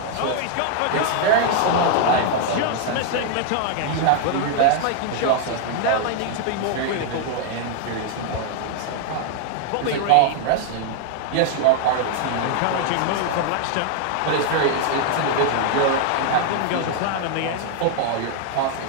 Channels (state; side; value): different; both; correlation 0.00